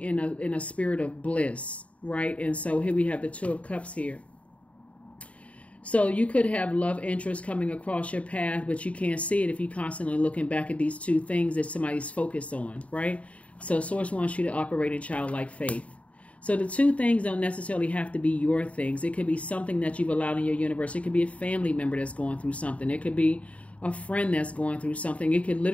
in a spirit of bliss, right? And so here we have the Two of Cups here. So you could have love interest coming across your path, but you can't see it if you're constantly looking back at these two things that somebody's focused on, right? So Source wants you to operate in childlike faith. So the two things don't necessarily have to be your things. It could be something that you've allowed in your universe. It could be a family member that's going through something. It could be a friend that's going through something. It could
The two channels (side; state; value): right; late; 0.065 ms